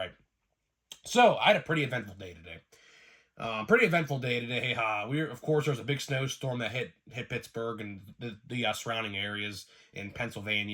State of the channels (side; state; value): both; identical; correlation 1.00